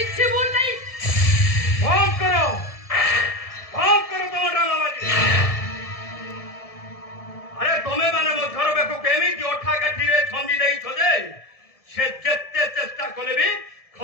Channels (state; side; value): late; right; 1.7 ms